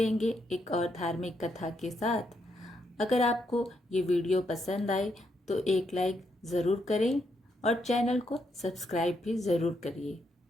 एक और धार्मिक कथा के साथ। अगर आपको ये वीडियो पसंद आए तो एक लाइक ज़रूर करें और चैनल को सब्सक्राइब भी ज़रूर करिए।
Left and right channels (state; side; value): normal; both; correlation 0.78